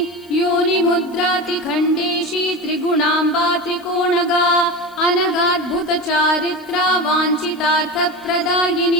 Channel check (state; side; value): noise; right; hiss, 28 dB below the sound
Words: योनिमुद्रातिखण्डेशी त्रिगुणाम्बा त्रिकोणगा अनगाद्भुतचारित्रा